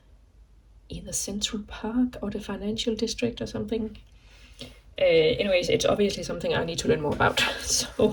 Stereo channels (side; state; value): both; identical; correlation 1.00